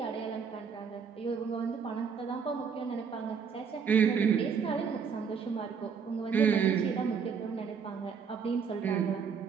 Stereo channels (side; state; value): left; quieter; 6.3 dB